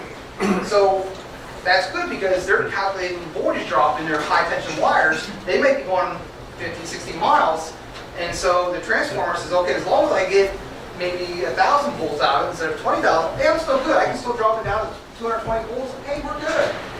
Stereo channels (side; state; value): both; identical; correlation 1.00